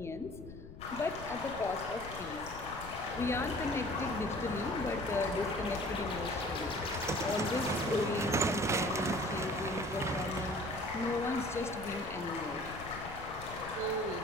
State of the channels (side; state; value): left; noise; rumble, 13 dB below the sound